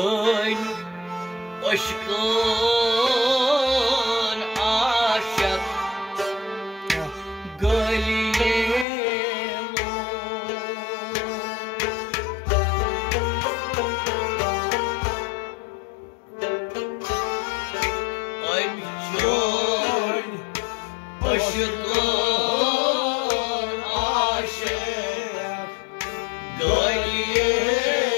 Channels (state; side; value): drops out; right; at 8.8 s